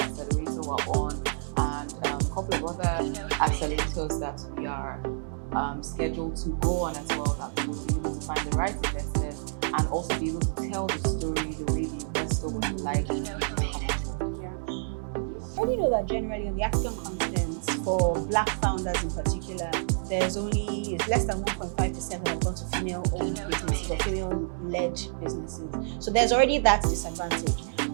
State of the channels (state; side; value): silent; left; 59 dB below the other